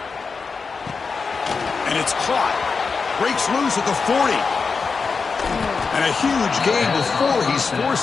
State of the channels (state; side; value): quieter; right; 4.9 dB